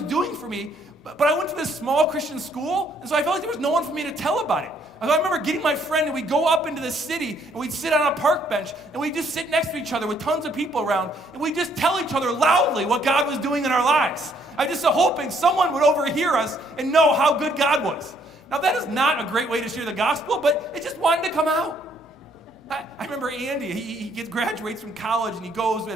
doing for me. But I went to this small Christian school, and so I felt like there was no one for me to tell about it. I remember getting my friend, and we'd go up into the city, and we'd sit on a park bench, and we'd just sit next to each other with tons of people around, and we'd just tell each other loudly what God was doing in our lives. I just hoping someone would overhear us and know how good God was. Now, that is not a great way to share the gospel, but it just wanted to come out. I remember Andy, he graduates from college, and he goes to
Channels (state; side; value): normal; both; correlation 0.67